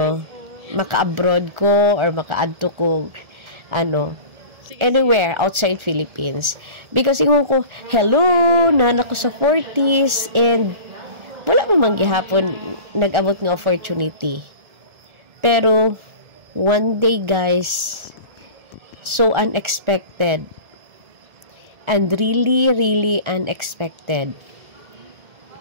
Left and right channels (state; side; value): late; left; 1.4 ms